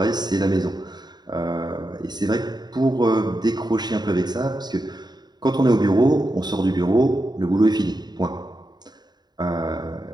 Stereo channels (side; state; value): left; late; 0.20 ms